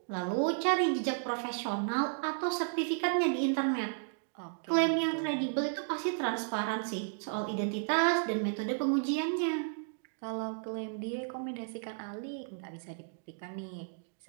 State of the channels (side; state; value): left; silent; digital silence